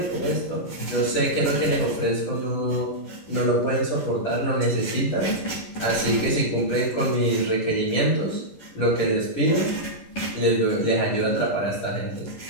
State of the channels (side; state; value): right; late; 11 ms